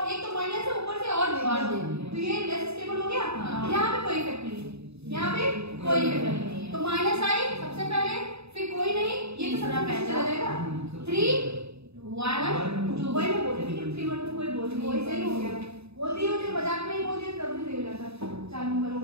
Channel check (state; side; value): late; left; 0.79 ms